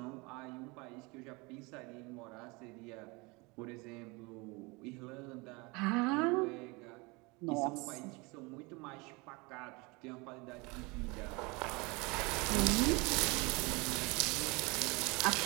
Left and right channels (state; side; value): quieter; left; 26.5 dB